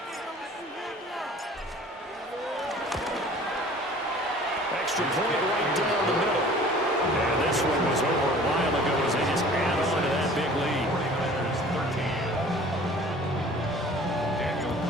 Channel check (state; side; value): normal; both; correlation 0.47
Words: Extra point right down the middle. And this one was over a while ago as they just add on to that big lead.